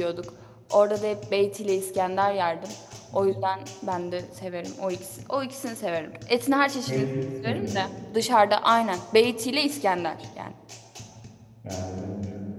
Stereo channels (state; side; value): identical; both; correlation 1.00